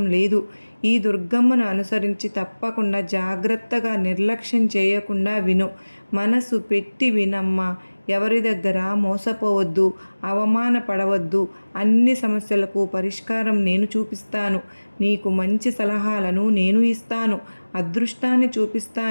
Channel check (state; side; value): inverted; both; correlation -1.00